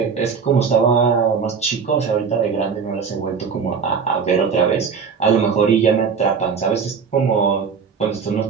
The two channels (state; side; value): quieter; left; 6.0 dB